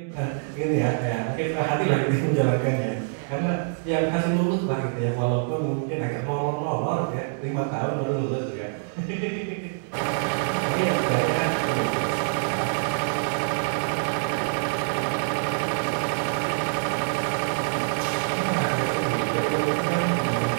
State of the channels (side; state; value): left; silent; digital silence